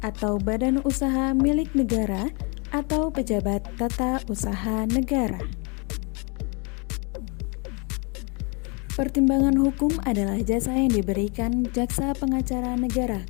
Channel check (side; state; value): right; quieter; 32.6 dB